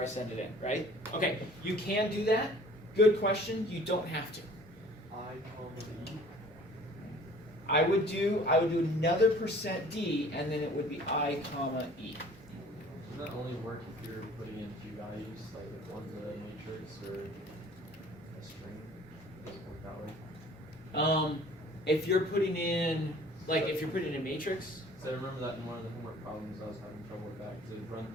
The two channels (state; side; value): normal; both; correlation 0.50